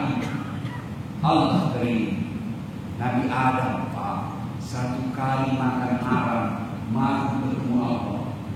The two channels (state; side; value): identical; both; correlation 1.00